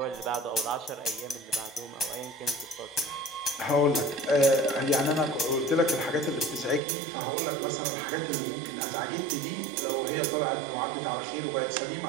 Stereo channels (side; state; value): left; drops out; at 6.8 s